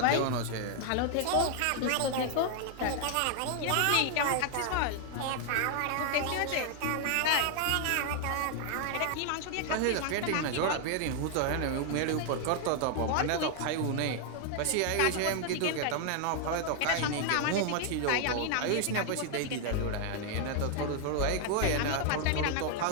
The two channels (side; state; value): both; different; correlation 0.00